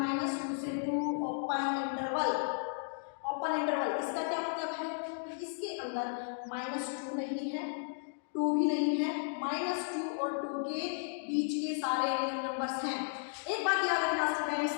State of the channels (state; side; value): silent; right; digital silence